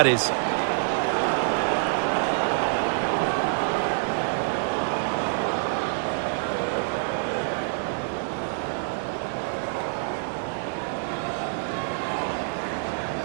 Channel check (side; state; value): left; silent; digital silence